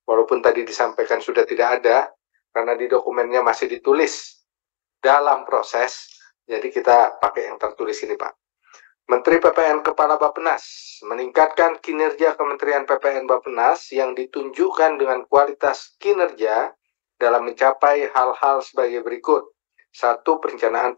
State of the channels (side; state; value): right; silent; digital silence